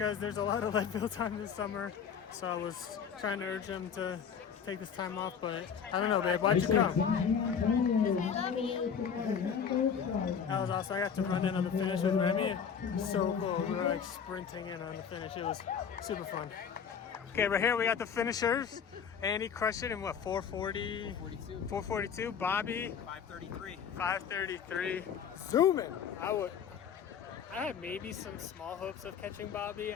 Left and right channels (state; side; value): quieter; right; 7.2 dB